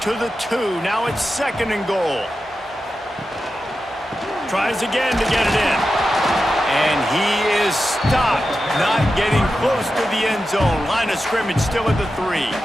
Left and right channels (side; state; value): both; normal; correlation 0.91